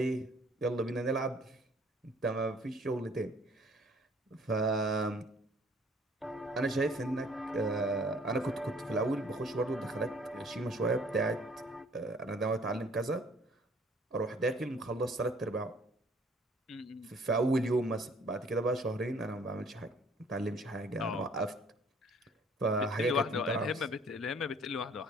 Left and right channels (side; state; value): both; normal; correlation 0.58